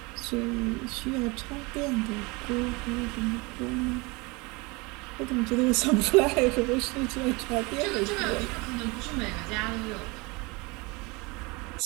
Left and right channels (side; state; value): left; quieter; 26.4 dB